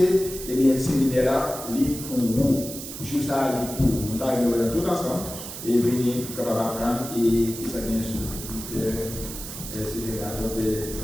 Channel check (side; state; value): right; noise; hiss, 9 dB below the sound